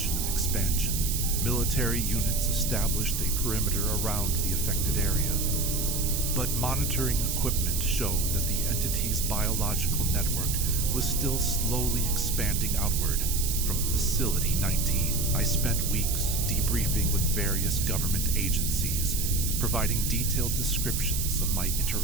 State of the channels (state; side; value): noise; right; hiss, 2 dB below the sound